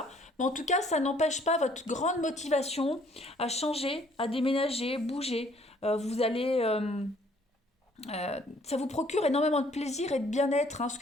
Mais en tout cas, ça n'empêche pas votre grande motivation à changer, à déménager, bouger. Ça vous procure énormément de plaisir et de bien-être, hein, ce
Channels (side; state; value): both; normal; correlation 0.61